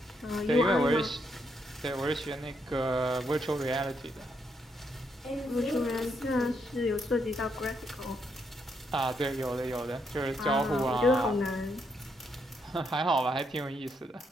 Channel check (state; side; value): normal; both; correlation 0.77